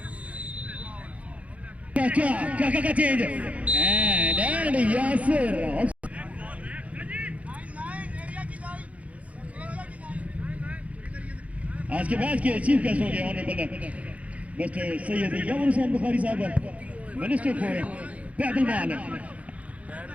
Kaka change and Yasir आज के मैच के चीफ गेस्ट होंगे ऑनरेबल मिस्टर सैयद यामन हुसैन बुखारी साहब मिनिस्टर फॉर पैदल माल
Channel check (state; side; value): late; left; 0.066 ms